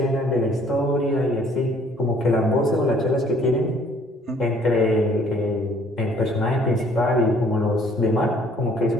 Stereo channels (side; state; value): both; normal; correlation 0.59